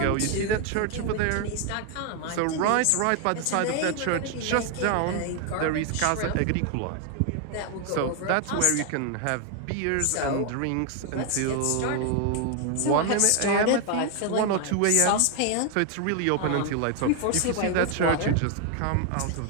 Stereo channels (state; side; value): different; both; correlation 0.00